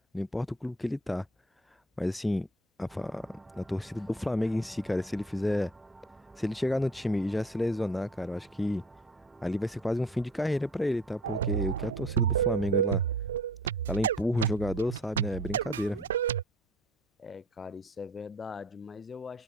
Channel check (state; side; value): normal; both; correlation 0.49